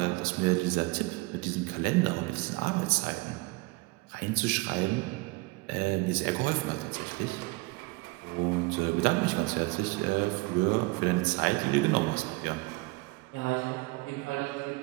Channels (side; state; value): left; quieter; 24.8 dB